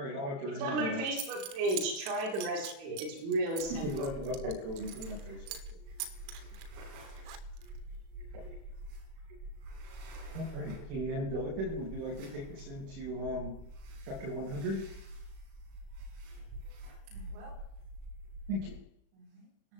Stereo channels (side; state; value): left; late; 36 ms